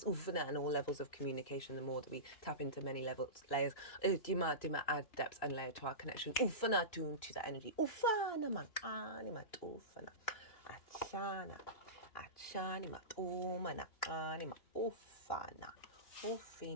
And all levels of communication, the more that we tap into many layers, add depth and layer to our connection. To that energy. Achanima umana anima ufana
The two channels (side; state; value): right; late; 2.9 ms